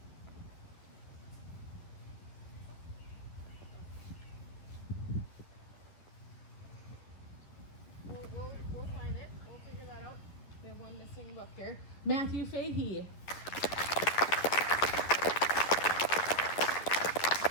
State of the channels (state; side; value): late; right; 10 ms